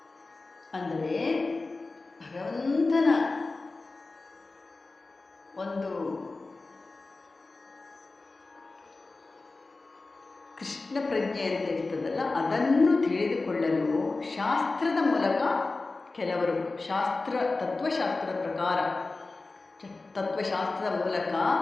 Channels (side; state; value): right; quieter; 3.5 dB